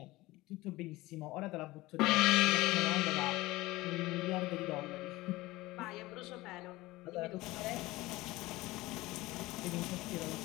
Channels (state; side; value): quieter; right; 19.4 dB